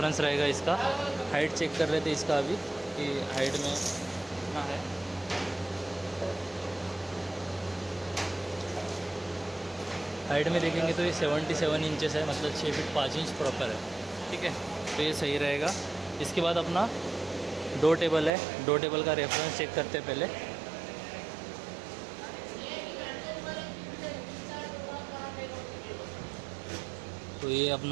रहेगा इसका। हाइट चेक कर लेते इसका अभी कि हाइट में कितना है। हाइट में देखेंगे तो ये 77 इंचेस है, मतलब 6 फीट 5 इंच प्रॉपर है। ठीक है, तो ये सही रहेगा। इसके बाद अपना डो टेबल है, डो टेबल का रेफरेंस चेक करते हैं पहले। तो ये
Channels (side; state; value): left; drops out; at 18.3 s